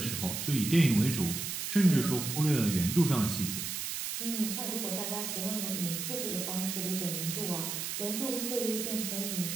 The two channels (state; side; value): noise; right; hiss, 4 dB below the sound